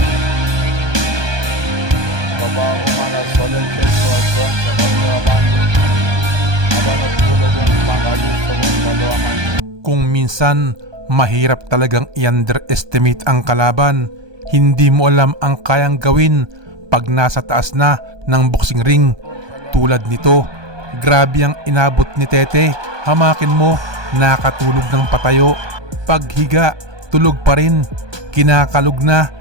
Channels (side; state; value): left; late; 1.2 ms